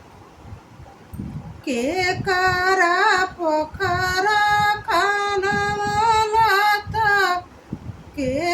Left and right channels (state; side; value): identical; both; correlation 1.00